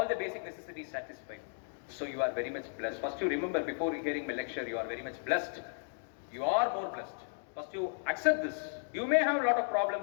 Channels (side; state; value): right; silent; digital silence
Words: the basic necessities satisfied. So you are very much blessed. First you remember, before hearing my lecture, you are very much blessed. You are more blessed. First you accept this. You may have a lot of